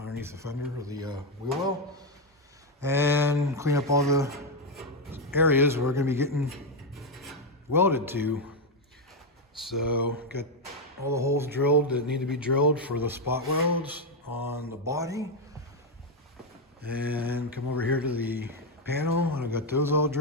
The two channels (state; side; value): normal; both; correlation 0.05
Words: the fender of the wheel well. And clean up all the areas where we're gonna be getting welded to. So got all the holes drilled that need to be drilled for the spot welds on the body. And come over here to the panel, and I've got those all